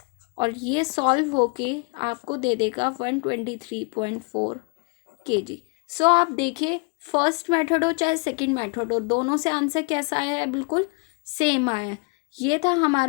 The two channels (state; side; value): quieter; right; 32.3 dB